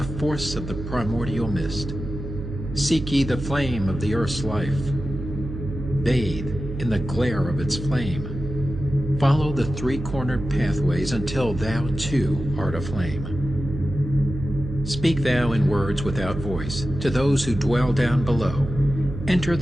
force of the primordial mist. Seek ye the flame of the earth's life. Bathe in the glare of its flame. Follow the three-cornered pathways until thou too art aflame. Speak thou in words without voice to those who dwell down below. Enter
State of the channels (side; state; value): right; noise; hum, 8 dB below the sound